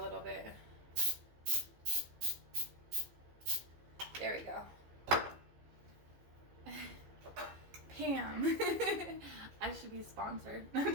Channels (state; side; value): late; left; 15 ms